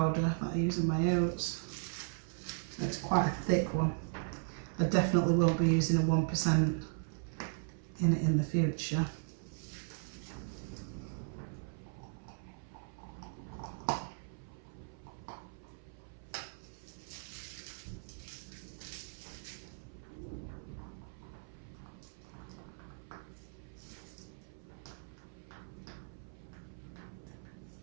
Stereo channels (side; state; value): left; silent; 53 dB below the other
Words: that I use in my oats. So it's quite a thick one. I definitely won't be using a 1% in it in the future.